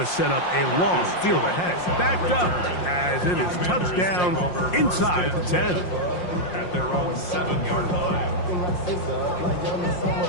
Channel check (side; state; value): right; late; 5.6 ms